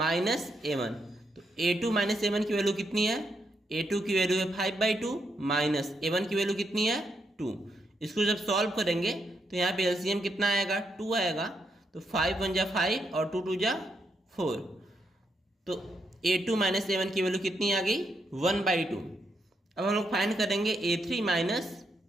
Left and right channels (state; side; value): normal; both; correlation 0.79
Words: a1। तो a2 माइनस a1 की वैल्यू कितनी है, a2 की वैल्यू है 5/2 माइनस a1 की वैल्यू कितनी है 2। इसको जब सॉल्व करेंगे तो यहाँ पे एलसीएम कितना आएगा 2 आएगा। तो 5 1 जा 5 और 2 2 जा 4। तो a2 माइनस a1 की वैल्यू कितनी आ गई 1/2। अब हम लोग फाइंड करेंगे a3 माइनस